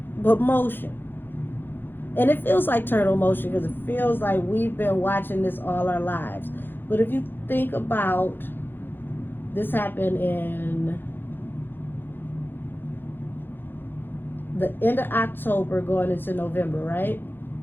but motion. And it feels like turtle motion because it feels like we've been watching this all our lives. But if you think about, this happened in the end of October going into November, right?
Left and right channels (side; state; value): right; late; 0.099 ms